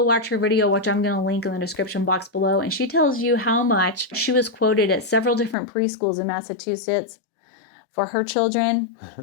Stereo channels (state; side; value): drops out; right; at 5.6 s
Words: watch her video, which I'm going to link in the description box below. And she tells you how much she was quoted at several different preschools in Massachusetts for her children.